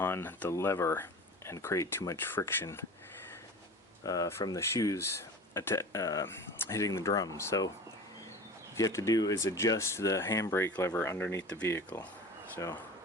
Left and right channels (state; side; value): normal; both; correlation 0.36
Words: the lever and create too much friction from the shoes hitting the drum. So what you have to do is adjust the handbrake lever underneath the vehicle. So